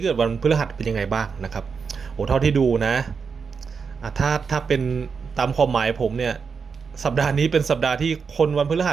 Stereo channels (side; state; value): left; quieter; 5.6 dB